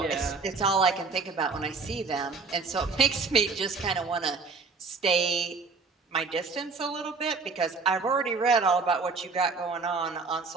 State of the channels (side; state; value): left; quieter; 4.4 dB